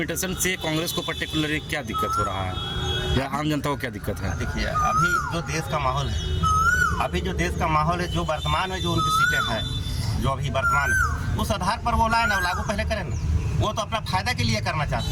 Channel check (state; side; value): identical; both; correlation 1.00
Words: से कांग्रेस को पर्टिकुलरली क्या दिक्कत हो रहा है या आम जनता को क्या दिक्कत है? देखिए, अभी जो देश का माहौल है, जो वर्तमान में जो उनकी सीटें हैं जो अभी वर्तमान है, उस आधार पर वो लाए ना, लागू पहले करें ना। वो तो अपना फायदा के लिए करना चाहती